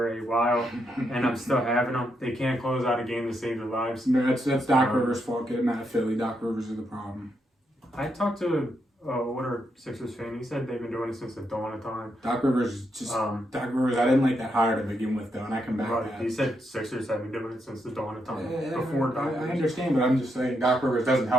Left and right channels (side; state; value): both; normal; correlation 0.80